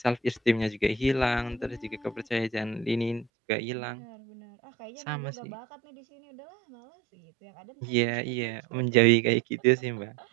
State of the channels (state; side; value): drops out; left; at 3.2 s